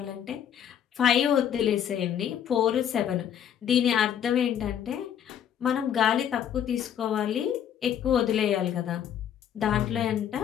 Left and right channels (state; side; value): quieter; right; 9.5 dB